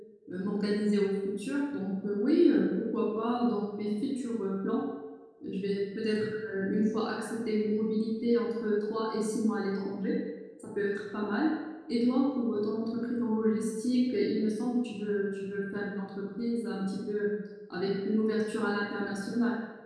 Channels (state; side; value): identical; both; correlation 1.00